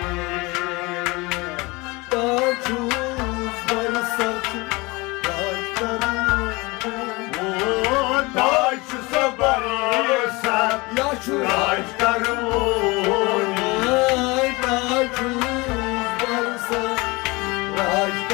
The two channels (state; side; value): quieter; right; 24.4 dB